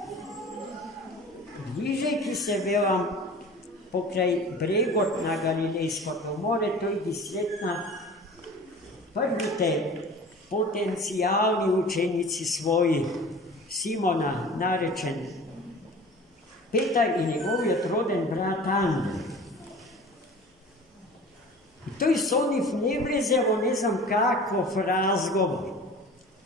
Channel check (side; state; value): both; normal; correlation 0.41